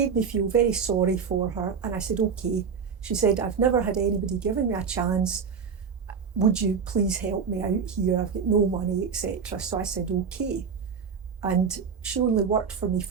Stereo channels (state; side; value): quieter; left; 6.1 dB